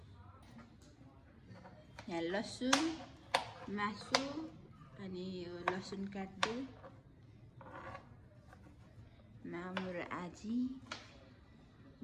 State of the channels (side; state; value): both; identical; correlation 1.00